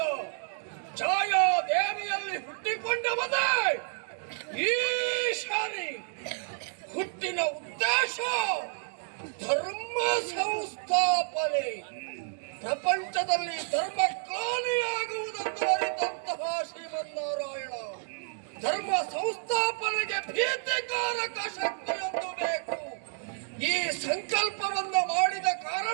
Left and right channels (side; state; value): left; silent; digital silence